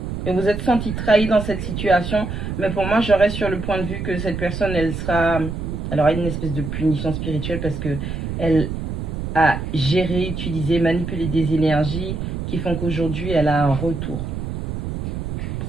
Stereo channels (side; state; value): right; noise; rumble, 5 dB below the sound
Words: Et vous êtes senti trahi dans cette situation. Mais pour moi, je reste sur le point de vue que cette personne, elle aura une espèce de punition spirituelle parce que elle a géré, utilisé, manipulé des énergies qui font qu'aujourd'hui, elle a un retour.